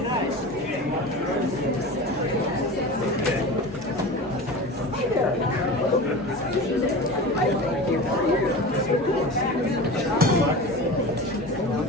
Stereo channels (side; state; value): both; normal; correlation 0.32